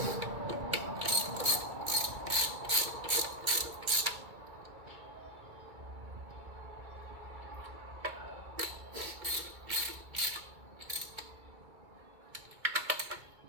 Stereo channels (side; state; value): left; late; 2.3 ms